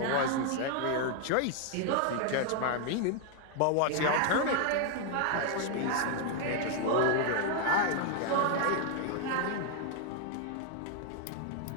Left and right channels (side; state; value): both; different; correlation 0.00